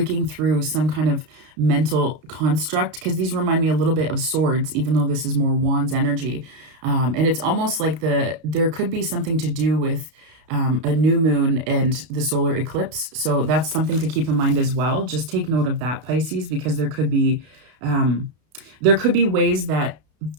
through some kind of mental construct, because these remind me a little bit of swords, even though this is more wands energy. And it's almost like there could be something to do with a new moon and the solar eclipse. So that's something to keep in mind as well. Just take note of that, Pisces, because there could be ways that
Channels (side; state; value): left; late; 32 ms